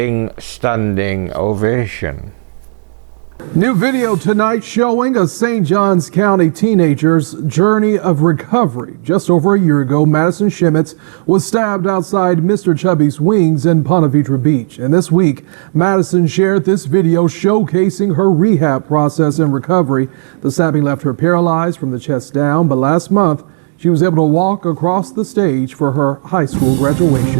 standing ovation. New video tonight showing a St. Johns County teenager's journey of recovery. Just over a year ago, Madison Schemitz was stabbed outside Mr. Chubby's Wings in Ponte Vedra Beach. And this week, Madison shared this video showcasing her rehab process and recovery. The stabbing left her paralyzed from the chest down, but last month, she was able to walk across the stage for her high school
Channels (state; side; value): silent; left; digital silence